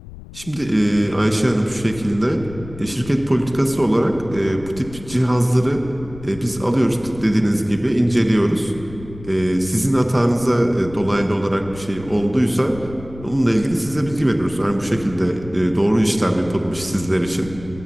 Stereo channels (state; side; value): noise; left; rumble, 16 dB below the sound